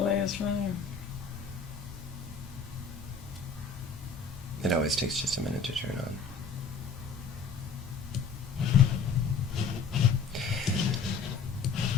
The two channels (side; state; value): right; quieter; 5.1 dB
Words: is running. It always takes just a minute to turn on.